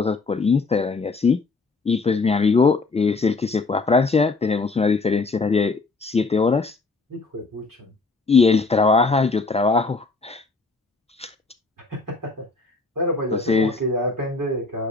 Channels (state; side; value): quieter; right; 3.9 dB